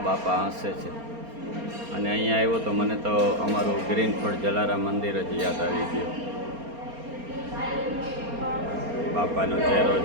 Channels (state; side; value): late; left; 4.3 ms